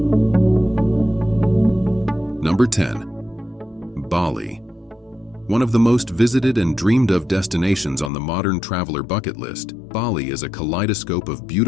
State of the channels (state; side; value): drops out; right; at 8.1 s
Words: Number 10. Bali. One of the most visited and dreamed of destinations on the modern traveler bucket list, Bali is a kaleidoscope of